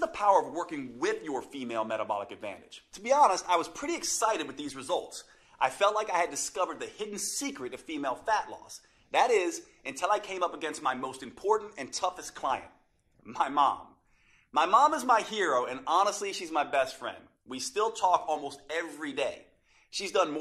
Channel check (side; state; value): both; identical; correlation 1.00